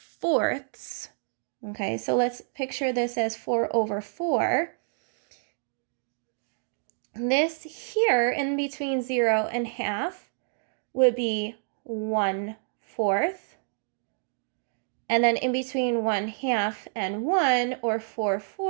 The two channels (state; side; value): silent; left; digital silence